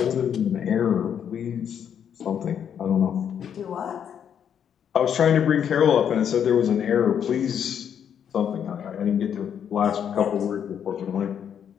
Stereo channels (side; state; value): right; quieter; 8.5 dB